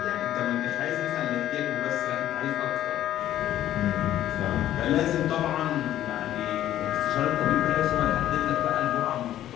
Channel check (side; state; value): right; quieter; 12.5 dB